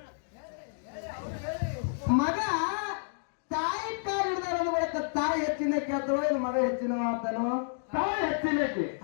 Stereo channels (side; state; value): right; silent; digital silence